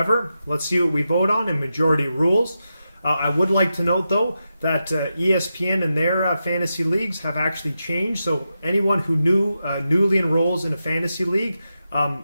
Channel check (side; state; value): both; inverted; correlation -0.89